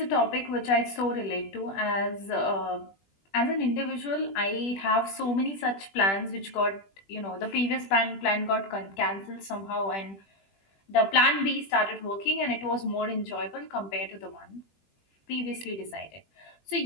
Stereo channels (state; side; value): late; right; 20 ms